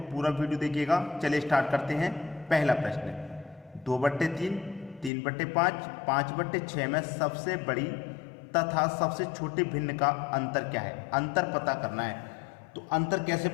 पूरा वीडियो देखिएगा। चलिए स्टार्ट करते हैं। पहला प्रश्न, 2/3, 3/5, 5/6 में सबसे बड़ी तथा सबसे छोटे भिन्न का अंतर क्या है? अंतर पता करना है। तो अंतर कैसे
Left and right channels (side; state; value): right; drops out; at 5.1 s